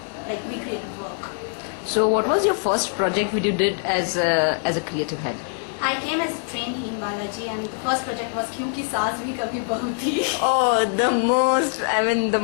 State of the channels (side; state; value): right; silent; 63 dB below the other